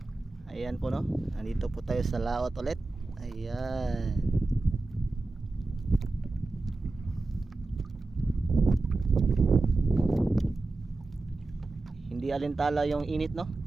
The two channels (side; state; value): left; quieter; 3.3 dB